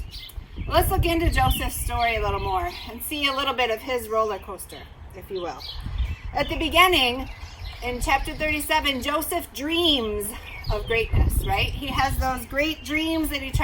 Let's look into Joseph's story a little more and see a little bit of his roller coaster, if you will. At the beginning, in chapter 37, Joseph dreams of greatness, right? He has those great dreams that he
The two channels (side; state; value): both; identical; correlation 1.00